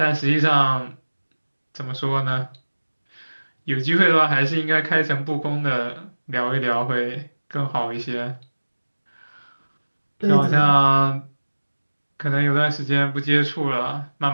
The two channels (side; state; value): both; inverted; correlation -1.00